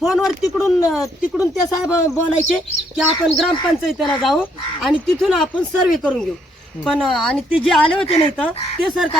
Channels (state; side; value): normal; both; correlation 0.71